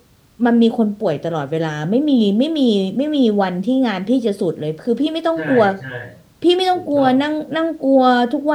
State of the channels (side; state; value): both; identical; correlation 1.00